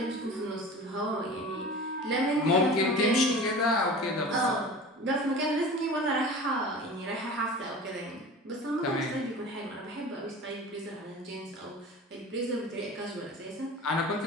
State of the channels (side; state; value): both; normal; correlation 0.37